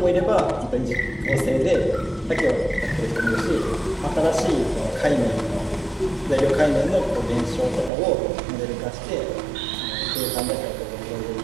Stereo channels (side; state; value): left; drops out; at 7.9 s